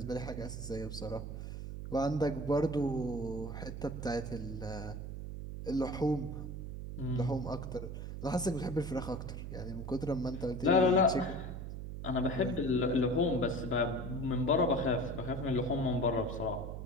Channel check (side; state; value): right; noise; hum, 7 dB below the sound